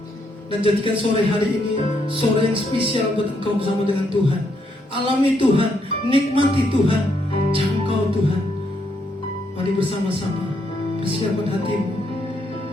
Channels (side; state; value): both; normal; correlation 0.75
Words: Dan jadikan sore hari ini sore yang spesial buat engkau bersama dengan Tuhan. Alami Tuhan, nikmati Tuhan, jangkau Tuhan. Mari bersama-sama persiapkan hatimu